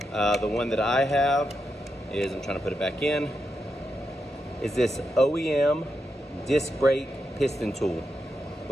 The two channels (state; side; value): normal; both; correlation 0.85